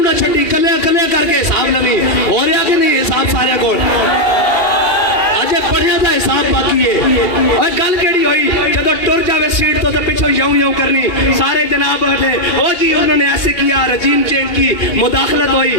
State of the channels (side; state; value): right; late; 2.8 ms